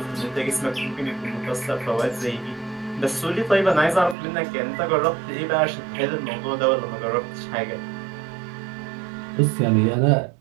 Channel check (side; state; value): left; drops out; at 4.2 s